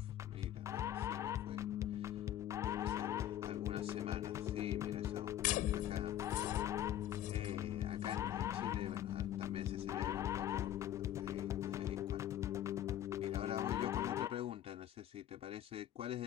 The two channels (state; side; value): quieter; right; 11.8 dB